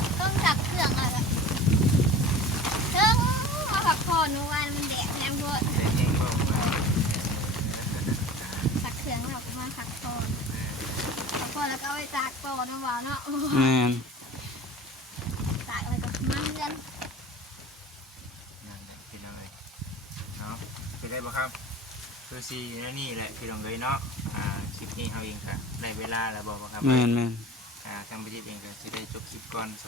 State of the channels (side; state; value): both; normal; correlation 0.39